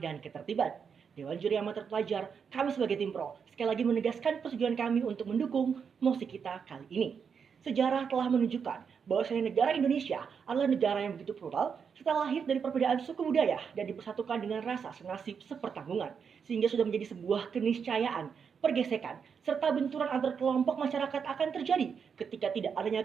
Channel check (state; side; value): quieter; left; 6.5 dB